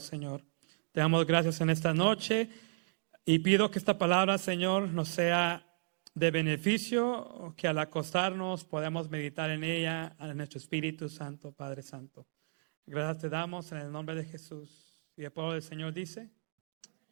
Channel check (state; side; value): silent; left; digital silence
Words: Señor. Te damos gracias en esta noche y pido que esta palabra, Señor, nos sea de beneficio, que al acostarnos podamos meditar en ella, en nuestro Espíritu Santo, Padre Santo. Gracias te damos en el nombre de Jesús. Y el pueblo del Señor dice,